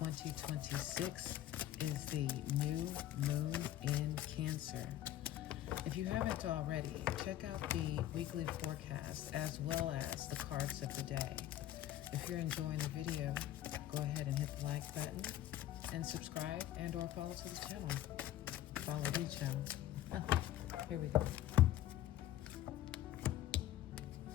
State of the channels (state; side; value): quieter; right; 13.0 dB